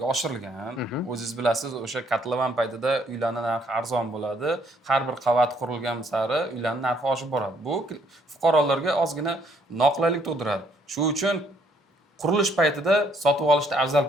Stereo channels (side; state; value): both; normal; correlation 0.67